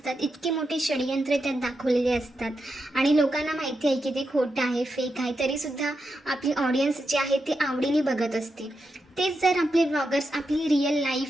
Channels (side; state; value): both; normal; correlation 0.86